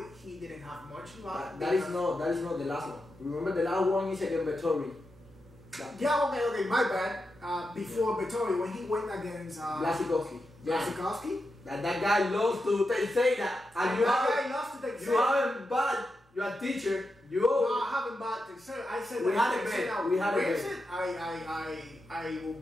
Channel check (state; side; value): normal; both; correlation 0.88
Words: he didn't have much luck. That is not the last one. Remember the last one is against Vettori. Yeah, okay, my bad. Before Vettori, when he went against Blasikowski. Blasikowski? That guy lost to Teixeira. And you guy lost to Teixeira. You haven't bought your teacher. No, I haven't bought Teixeira. I said we had a bet. We had a bet. I will